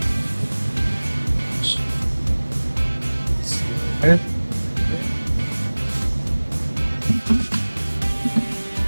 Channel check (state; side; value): inverted; both; correlation -1.00